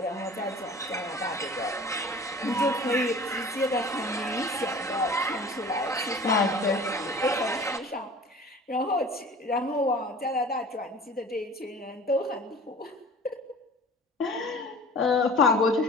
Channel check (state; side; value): normal; both; correlation 0.43